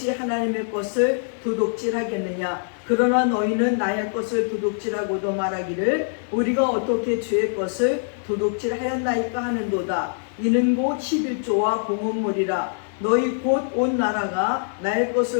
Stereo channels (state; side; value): silent; right; digital silence